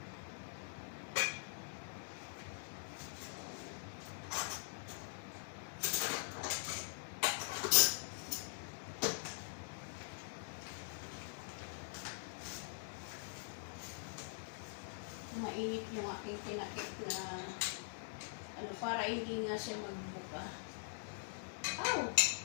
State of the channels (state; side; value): silent; right; digital silence